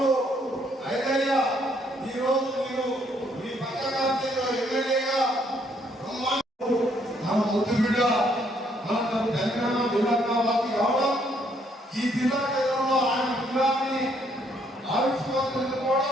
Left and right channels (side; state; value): both; normal; correlation 0.69